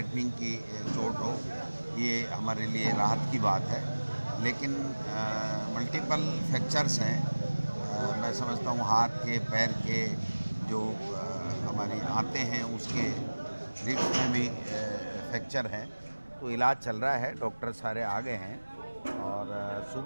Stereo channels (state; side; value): inverted; both; correlation -1.00